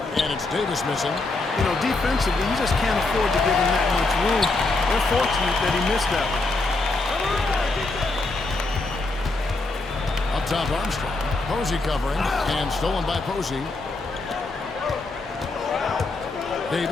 And it's Davis missing. You know, defensively, you just can't afford to give him that much room. They're fortunate that he missed that one. Up top, Armstrong. Posey covering. And stolen by Posey.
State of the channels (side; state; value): right; quieter; 3.3 dB